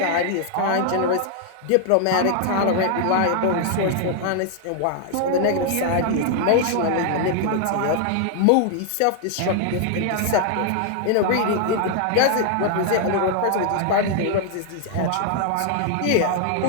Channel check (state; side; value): different; both; correlation 0.00